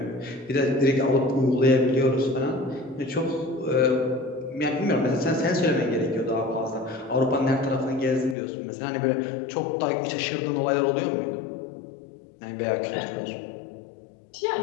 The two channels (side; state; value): right; drops out; at 8.3 s